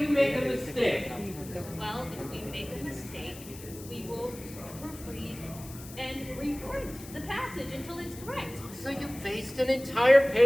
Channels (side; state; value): left; noise; hiss, 16 dB below the sound